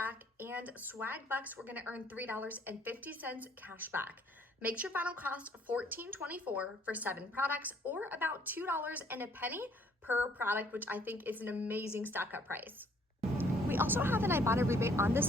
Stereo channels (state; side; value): normal; both; correlation 0.62